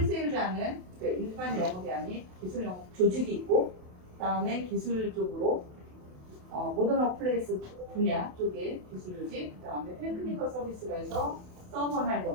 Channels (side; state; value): left; late; 28 ms